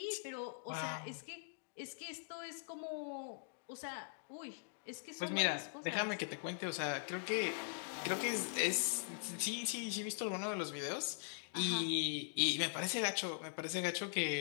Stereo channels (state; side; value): silent; right; digital silence